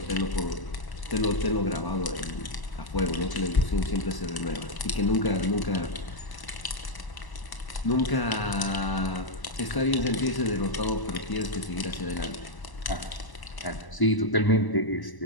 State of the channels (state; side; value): late; right; 1.0 ms